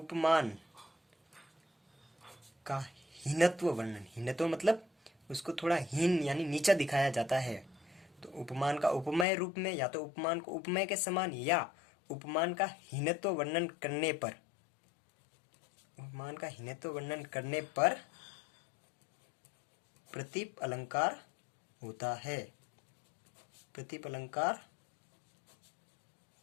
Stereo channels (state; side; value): drops out; right; at 9.2 s